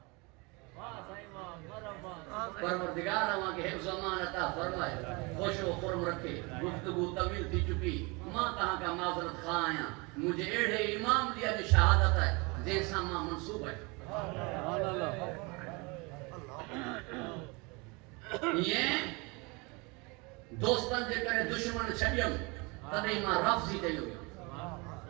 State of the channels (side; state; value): left; quieter; 27.8 dB